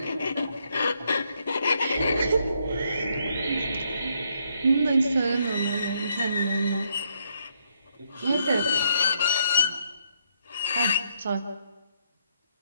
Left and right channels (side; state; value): both; inverted; correlation -0.74